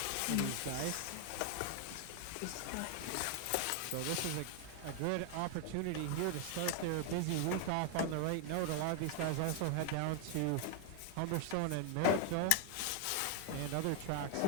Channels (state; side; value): different; both; correlation 0.00